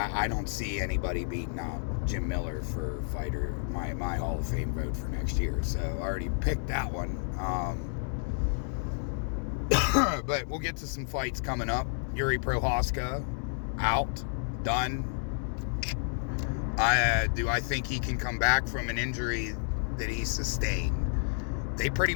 don't see anybody beating out Jim Miller for fighter, my Hall of Fame vote for next year. So I already picked that one. But we'll get to some fights coming up. Yuri Prohaska, out, done. Do I think he can come back from an injury that he sustained? They pretty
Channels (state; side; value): silent; right; digital silence